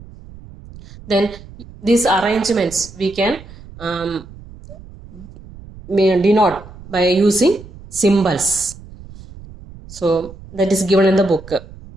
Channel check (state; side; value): noise; right; rumble, 18 dB below the sound